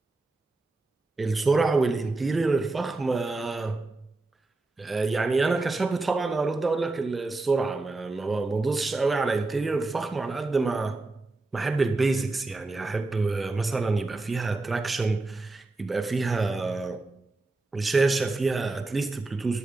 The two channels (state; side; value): quieter; left; 3.3 dB